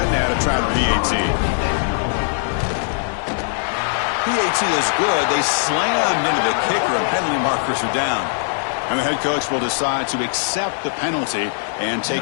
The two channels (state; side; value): silent; right; digital silence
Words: now to try the PAT. PAT is good. They slammed into the kicker, and penalty markers are down. And the head coach will decide to accept the penalty and